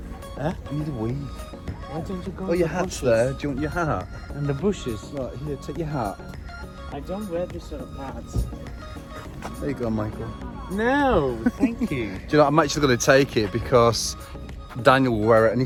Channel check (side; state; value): both; identical; correlation 1.00